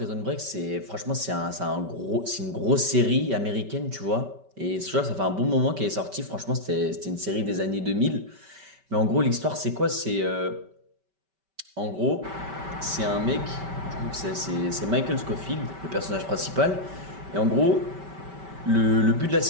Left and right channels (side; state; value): left; late; 5.2 ms